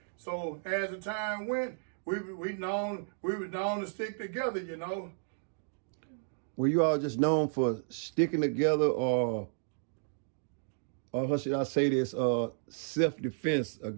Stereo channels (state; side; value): silent; left; digital silence